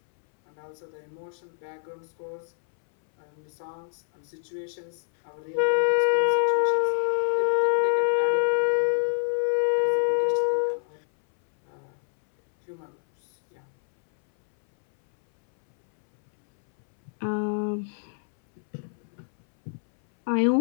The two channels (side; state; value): right; silent; 61 dB below the other